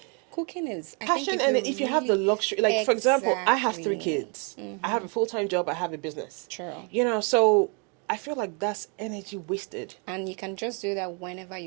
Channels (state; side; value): quieter; left; 36.5 dB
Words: Cooking is, I think, Passion, if and you if you have the really, luxury, like for example, I have three exactly, kids. I have mm-hmm, a full-time job. I have a business. true. You know, so I feel like that's energy wasted. And you can just do that whenever